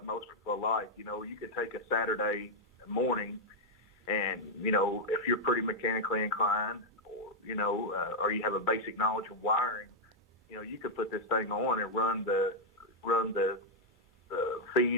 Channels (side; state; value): both; normal; correlation -0.03